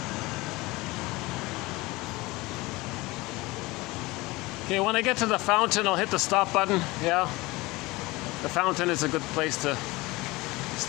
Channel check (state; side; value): quieter; right; 21.7 dB